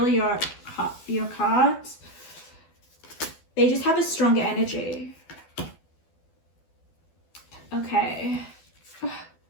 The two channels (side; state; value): right; late; 12 ms